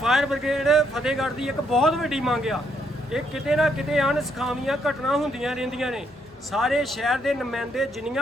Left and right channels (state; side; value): normal; both; correlation 0.74